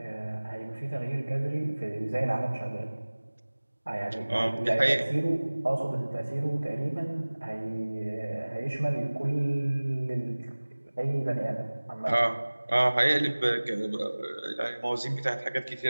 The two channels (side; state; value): both; inverted; correlation -1.00